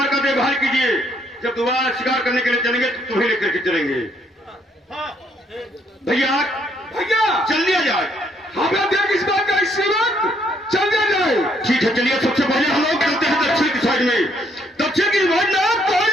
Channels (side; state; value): both; normal; correlation 0.69